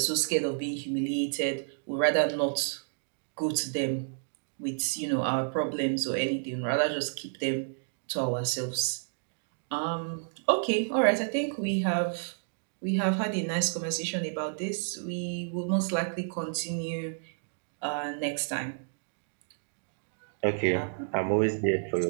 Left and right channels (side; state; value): left; silent; digital silence